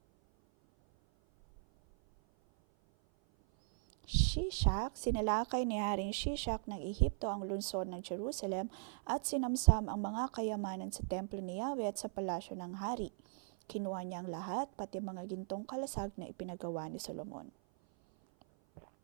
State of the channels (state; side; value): silent; left; 52 dB below the other